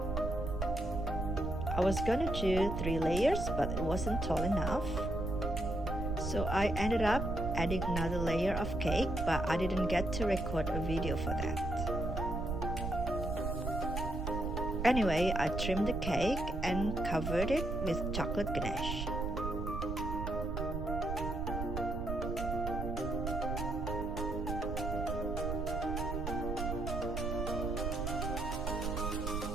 I was gonna do 3 layers, but it wasn't tall enough. So I ended up adding another layer of cake, but I didn't get to record a video for that. Anyway, I trimmed the cake and covered it with chocolate ganache.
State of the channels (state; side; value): noise; right; rumble, 3 dB below the sound